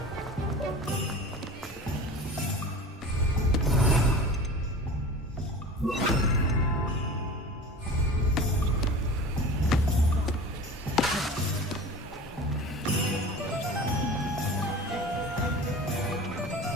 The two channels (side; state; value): both; normal; correlation 0.36